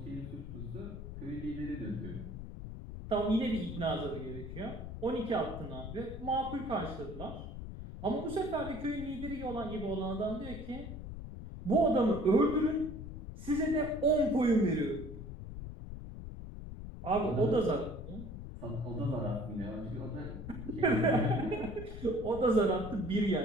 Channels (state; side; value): noise; left; rumble, 9 dB below the sound